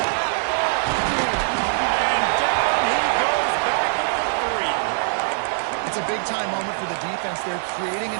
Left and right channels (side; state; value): left; silent; digital silence